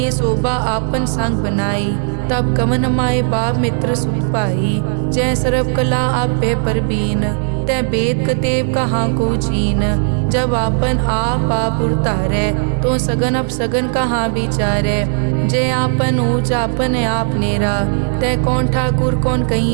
शोभा आपन संग बनाई, तब कवन माए बाप मित्र सुत पाई। जय सर्व कला आपे परबीन, तै वेद कतेब कहाँ को चीन। जब आपन आप उरतारै, तो सगन अपसगन कहाँ विचारै। जय आपन ऊंच आपन आप नेरा, तै कौन ठाकुर कौन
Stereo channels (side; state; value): left; silent; 62 dB below the other